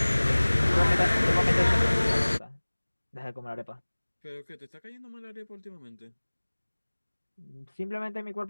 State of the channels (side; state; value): both; inverted; correlation -1.00